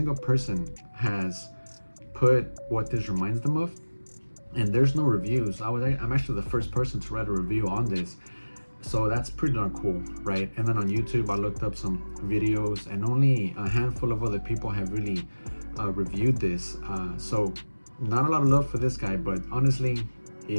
person has put what this reminds them of. And there's no reviews. I'm actually the first person to write a review on this, so that's pretty darn cool, right? And then on YouTube I looked up some videos, and only a handful of other people have really reviewed this, so not a lot of love for this guy. But honestly,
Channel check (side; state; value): both; inverted; correlation -1.00